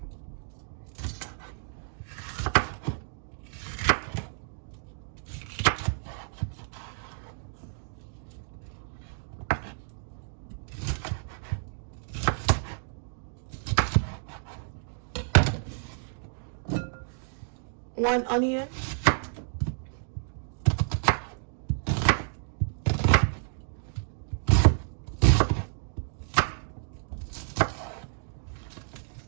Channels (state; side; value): silent; left; digital silence